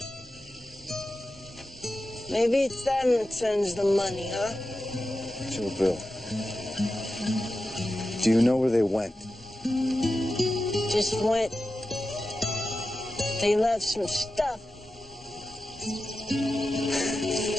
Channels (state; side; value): normal; both; correlation 0.92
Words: Maybe it's them that sends the money, huh? Joe Bill. Do you know where they went? Just went. They left some stuff.